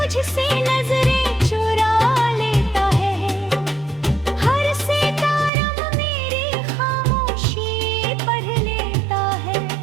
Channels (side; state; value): left; drops out; at 5.5 s